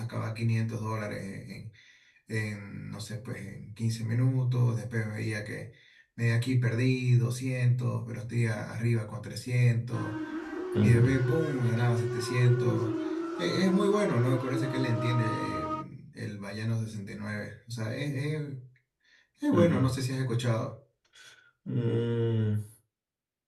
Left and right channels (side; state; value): both; identical; correlation 1.00